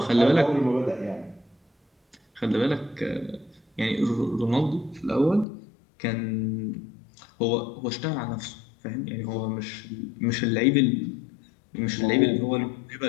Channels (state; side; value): drops out; right; at 5.5 s